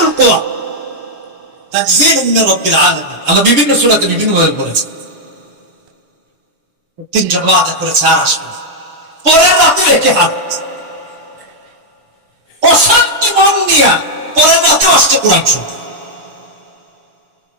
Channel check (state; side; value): late; left; 6.9 ms